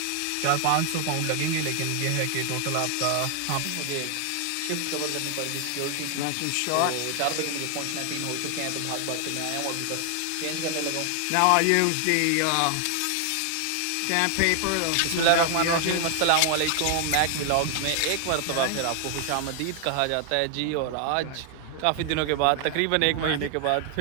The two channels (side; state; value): both; different; correlation 0.00